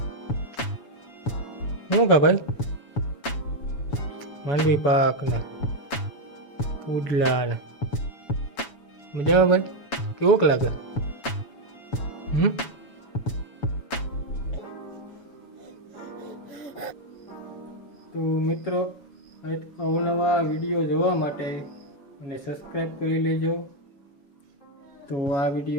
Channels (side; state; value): right; late; 7.1 ms